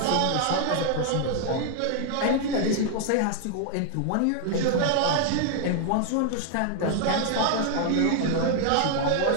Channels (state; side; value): different; both; correlation 0.00